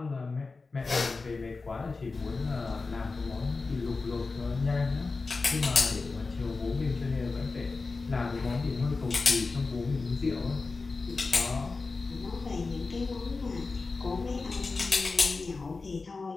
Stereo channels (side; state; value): right; quieter; 4.0 dB